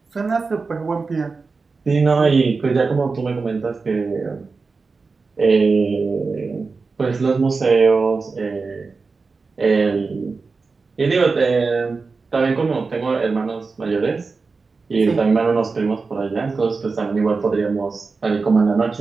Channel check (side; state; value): left; quieter; 4.3 dB